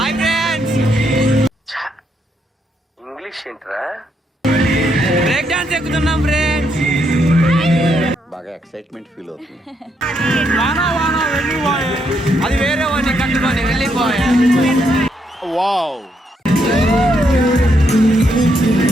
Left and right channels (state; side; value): normal; both; correlation 0.76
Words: English ఏంట్రా? Break dance ఎక్కుతున్నాం friends. బాగా ఎక్సైట్మెంట్ ఫీల్ అవుతుంది. వానా వానా వెళ్ళిపోయే, అది వేరే వాడిని కట్టుకొని వెళ్ళిపోయా. వావ్.